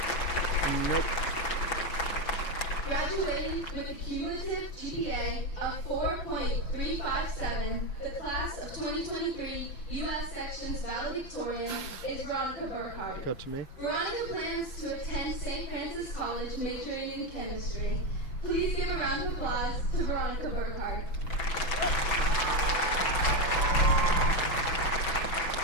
Graduating with a cumulative GPA of 4.357, the class of 2023 U.S. Sections valedictorian is Veronica Burkhardt. Go to me. Veronica plans to attend St. Francis College majoring in chemistry. Please give a round of applause to Veronica Burkhardt.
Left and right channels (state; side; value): late; right; 6.0 ms